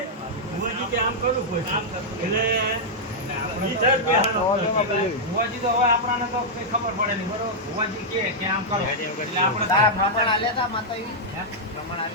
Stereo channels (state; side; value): normal; both; correlation -0.06